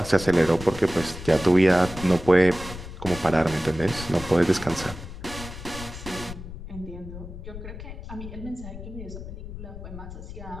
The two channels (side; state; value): left; noise; rumble, 11 dB below the sound